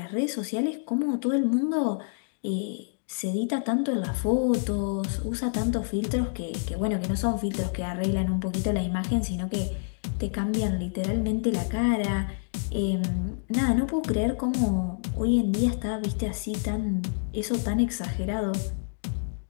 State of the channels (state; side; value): silent; right; digital silence